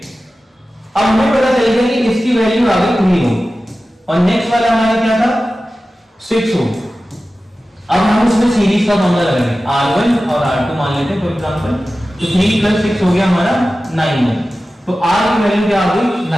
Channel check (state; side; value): normal; both; correlation 0.95